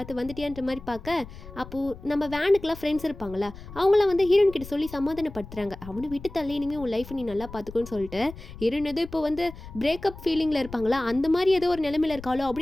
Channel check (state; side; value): noise; left; rumble, 15 dB below the sound